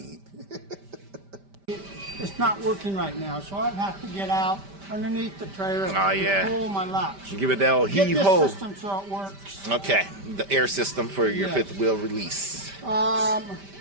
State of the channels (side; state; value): left; late; 5.1 ms